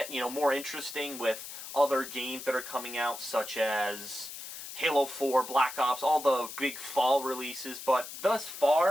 more interesting with other games that are coming out, such as Halo 4, Black Ops, all the big fall releases, but thus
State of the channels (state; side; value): noise; left; hiss, 11 dB below the sound